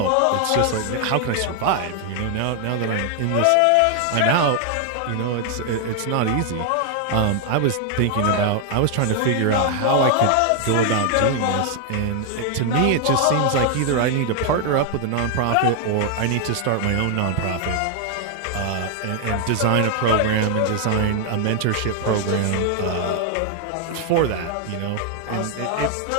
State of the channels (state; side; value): different; both; correlation 0.00